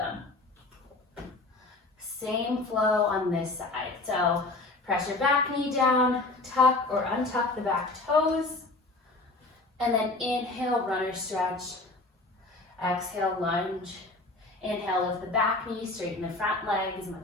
Same flow on this side. So press your back knee down, tuck or untuck the back toes, and then inhale, runner stretch. Exhale, lunge. Inhale, lift the back knee, straighten the front leg as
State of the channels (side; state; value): right; quieter; 3.1 dB